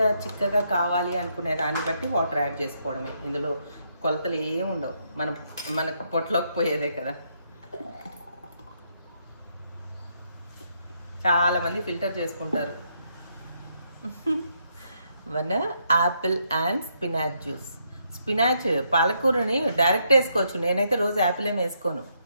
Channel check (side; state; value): both; inverted; correlation -0.76